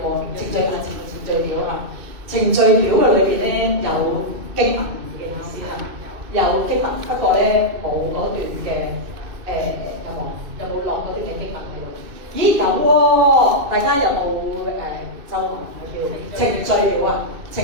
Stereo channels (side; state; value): left; late; 2.6 ms